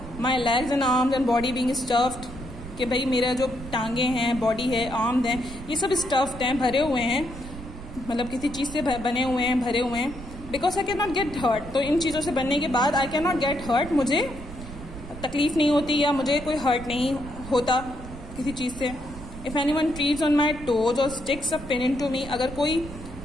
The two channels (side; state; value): right; noise; rumble, 13 dB below the sound